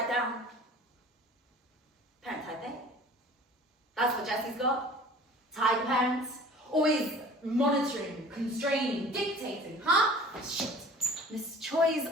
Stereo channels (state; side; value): normal; both; correlation 0.45